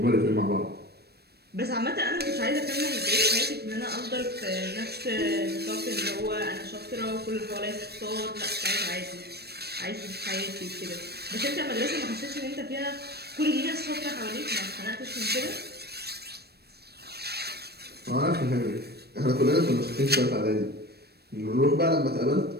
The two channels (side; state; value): left; late; 0.47 ms